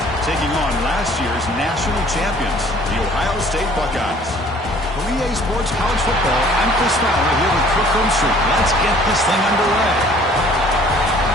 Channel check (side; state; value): both; normal; correlation 0.54